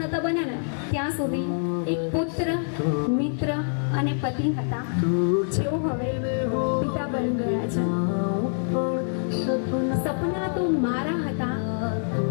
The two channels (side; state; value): right; silent; digital silence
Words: નહોતા બન્યા ને ત્યાં સુધી એક પુત્ર, મિત્ર અને પતિ હતા, જેઓ હવે પિતા બની ગયા છે. સપના તો મારા હતા